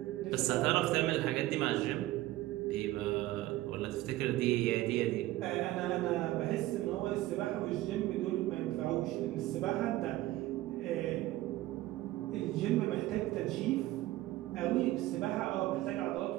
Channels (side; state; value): left; quieter; 16.6 dB